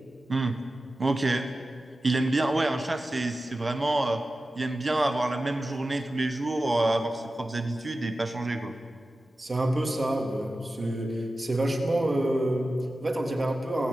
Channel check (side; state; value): both; normal; correlation 0.94